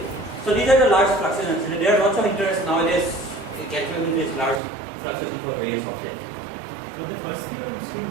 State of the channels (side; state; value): left; drops out; at 4.6 s